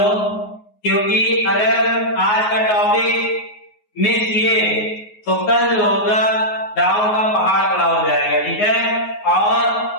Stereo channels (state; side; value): late; right; 9.5 ms